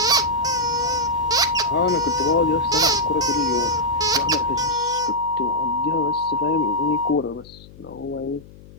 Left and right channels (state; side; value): noise; left; hum, 21 dB below the sound